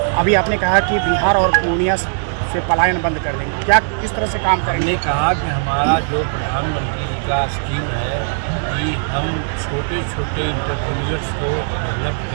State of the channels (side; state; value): left; silent; digital silence